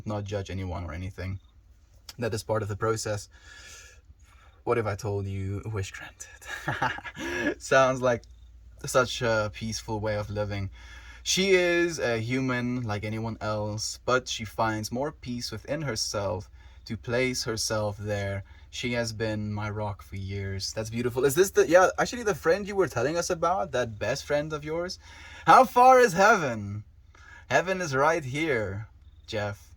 not judge anyone or anything. That is part of the process. What if I told you wish granted? Sounds like such a peaceful way of living. She is a human like anyone else, but she finds more peace within herself to place herself there. She has been my rock for years. That's beautiful. Is this actually the friend you were telling us about? That best friend of yours? How far is heaven? Heaven is right here, Jeff.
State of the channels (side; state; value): both; identical; correlation 1.00